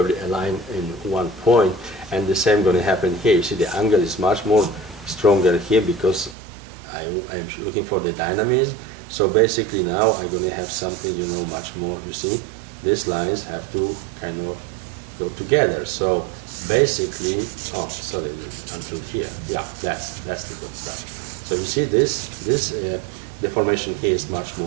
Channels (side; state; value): left; drops out; at 6.4 s